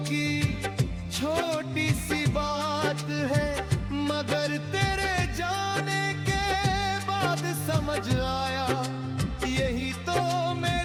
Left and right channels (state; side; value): identical; both; correlation 1.00